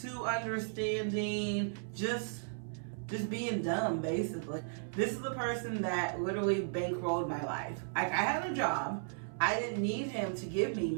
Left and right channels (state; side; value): silent; left; 54 dB below the other